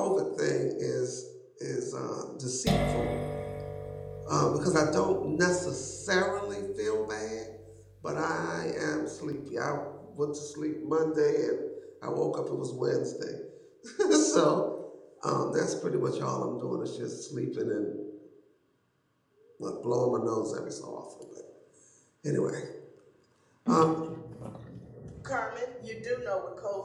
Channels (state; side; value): identical; both; correlation 1.00